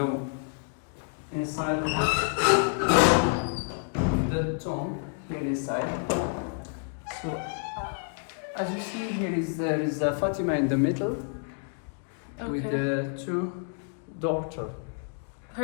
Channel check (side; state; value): right; silent; 59 dB below the other